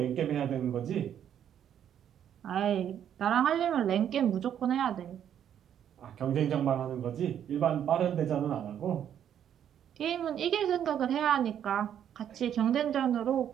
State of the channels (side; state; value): left; quieter; 9.6 dB